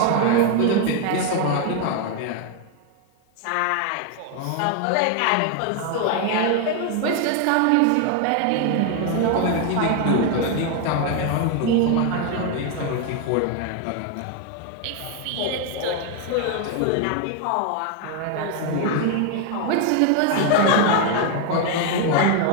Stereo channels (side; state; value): both; different; correlation 0.01